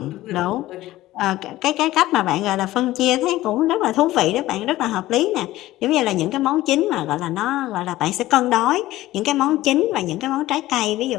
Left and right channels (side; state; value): right; quieter; 16.2 dB